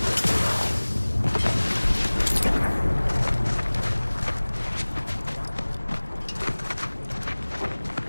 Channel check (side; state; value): both; inverted; correlation -1.00